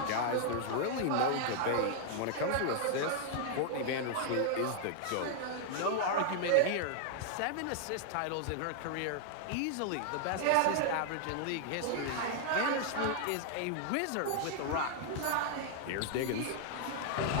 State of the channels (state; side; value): different; both; correlation -0.01